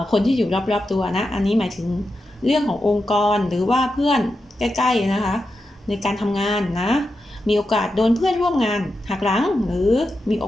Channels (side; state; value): both; normal; correlation 0.89